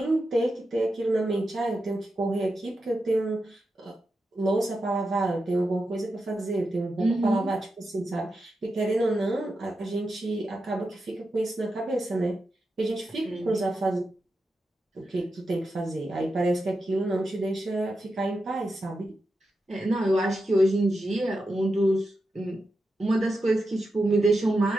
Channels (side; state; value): both; normal; correlation 0.88